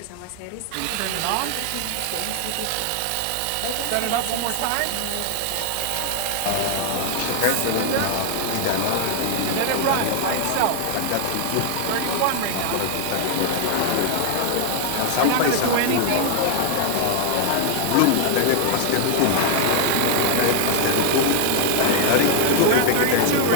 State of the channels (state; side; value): different; both; correlation 0.00